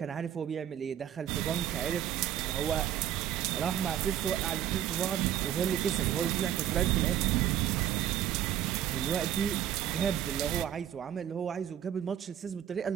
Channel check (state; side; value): quieter; left; 10.8 dB